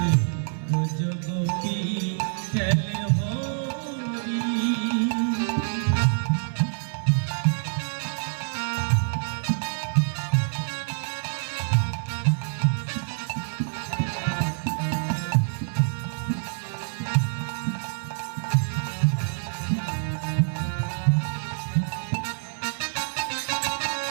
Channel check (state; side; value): silent; left; digital silence